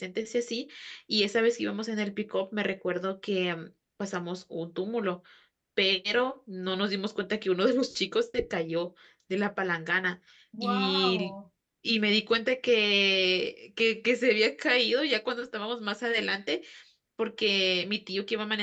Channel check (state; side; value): identical; both; correlation 1.00